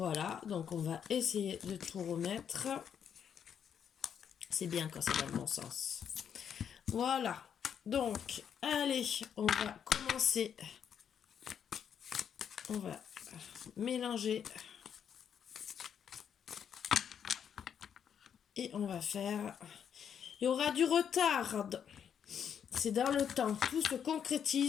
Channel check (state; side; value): quieter; right; 8.2 dB